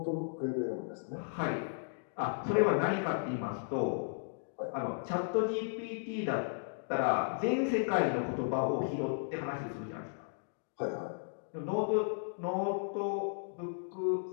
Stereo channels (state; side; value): silent; right; digital silence